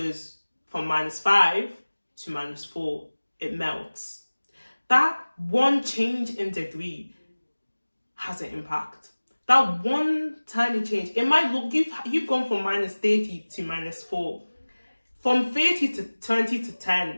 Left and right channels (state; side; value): inverted; both; correlation -1.00